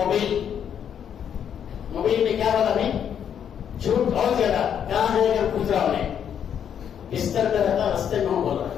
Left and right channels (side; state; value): right; quieter; 8.6 dB